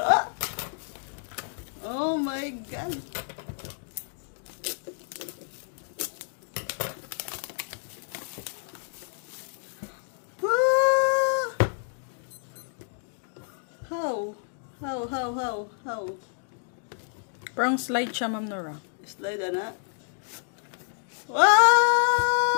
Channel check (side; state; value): right; silent; digital silence